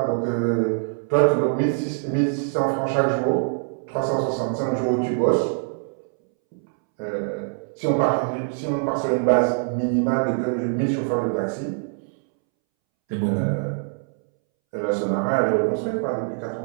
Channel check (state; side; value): silent; left; 63 dB below the other